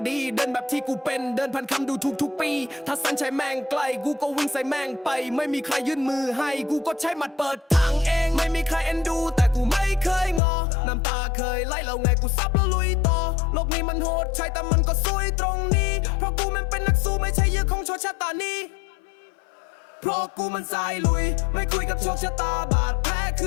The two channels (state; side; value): drops out; right; at 10.4 s